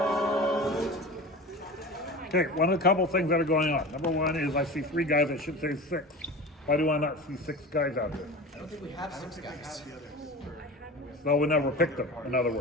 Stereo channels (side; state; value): both; normal; correlation 0.33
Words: Okay, one of the couple things that are going on. Number one is I see 3 guys, I should say 6. Why do I not see 6 guys out there? I don't think we have 6 guys. No, we never picked them, in other